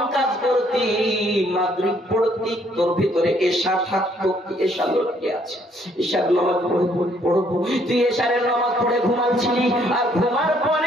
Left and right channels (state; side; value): normal; both; correlation 0.67